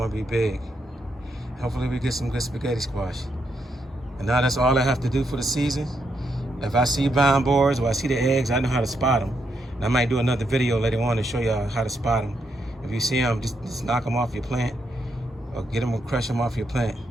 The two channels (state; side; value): normal; both; correlation 0.79